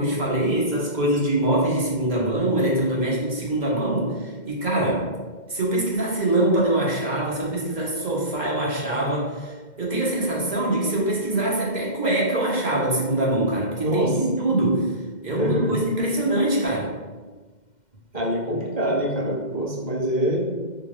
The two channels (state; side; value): late; right; 2.1 ms